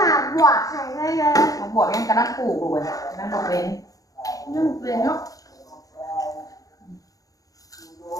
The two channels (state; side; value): late; right; 0.17 ms